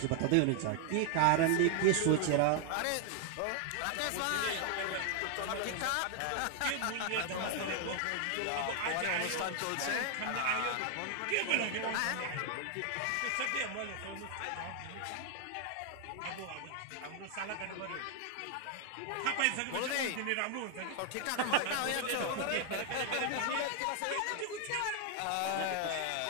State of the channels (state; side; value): different; both; correlation 0.00